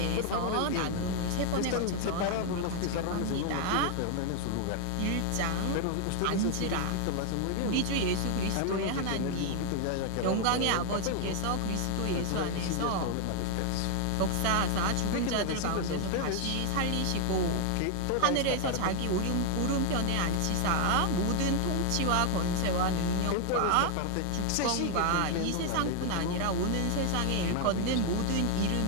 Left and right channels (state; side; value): different; both; correlation 0.00